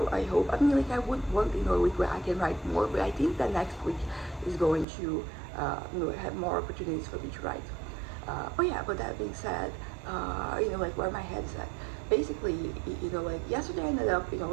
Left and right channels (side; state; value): left; drops out; at 4.9 s